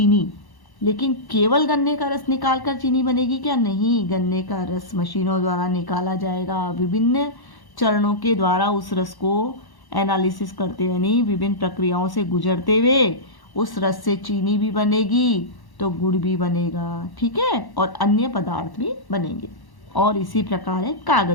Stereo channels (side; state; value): right; late; 1.1 ms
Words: लेकिन केवल गन्ने का रस निकालकर चीनी बनेगी क्या? नहीं, गन्ने का रस मशीनों द्वारा निकाला जाएगा। विभिन्न चरणों के द्वारा उस रस को एनालिसिस करते यानी विभिन्न प्रक्रियाओं से गुजरते हुए उस रस से चीनी भी बनेगी तो गुड़ भी बनेगा। ठीक है, और अन्य पदार्थ भी बनेंगे। और इसी प्रकार है